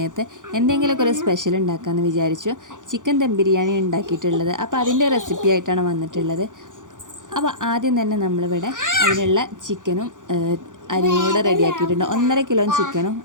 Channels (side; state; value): left; late; 0.87 ms